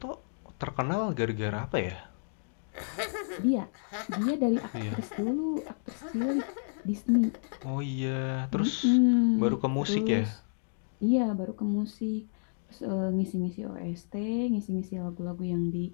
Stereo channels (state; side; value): silent; right; digital silence